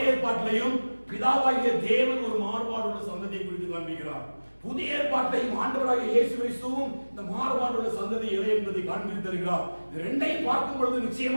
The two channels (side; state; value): both; inverted; correlation -1.00